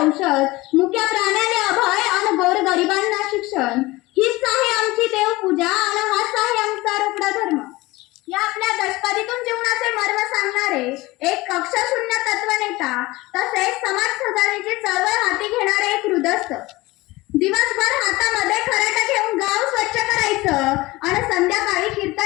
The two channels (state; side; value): quieter; right; 20.5 dB